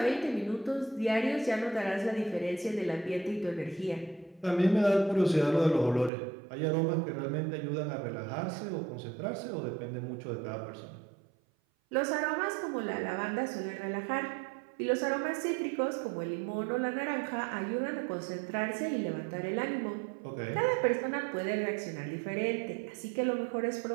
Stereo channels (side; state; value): left; drops out; at 6.1 s